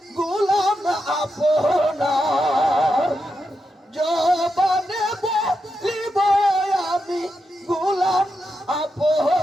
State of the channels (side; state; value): both; normal; correlation 0.86